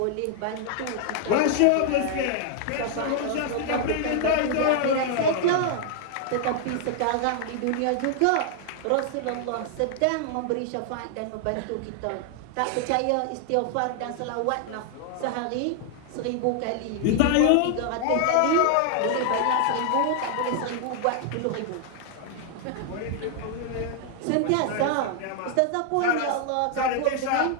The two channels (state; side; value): different; both; correlation 0.00